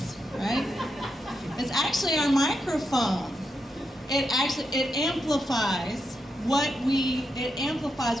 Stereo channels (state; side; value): normal; both; correlation 0.84